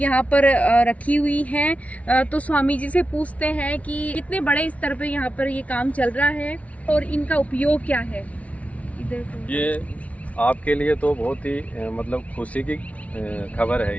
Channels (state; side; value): late; right; 0.067 ms